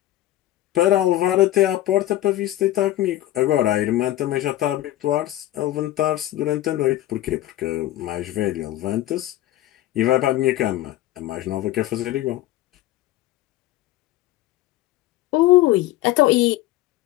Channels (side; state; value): right; quieter; 14.9 dB